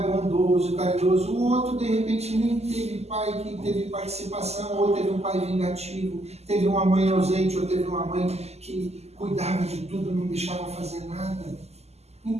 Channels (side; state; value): left; late; 0.30 ms